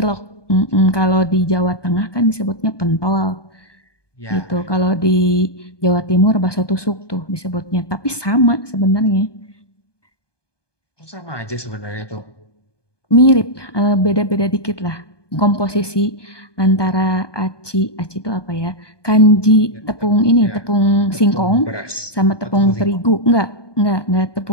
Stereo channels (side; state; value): right; late; 1.2 ms